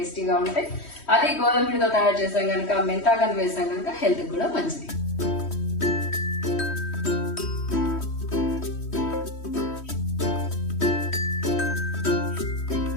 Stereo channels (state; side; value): late; right; 3.1 ms